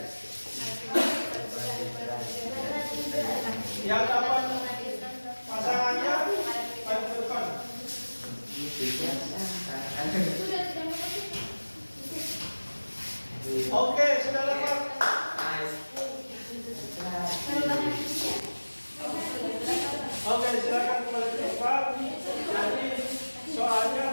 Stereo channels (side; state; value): both; inverted; correlation -1.00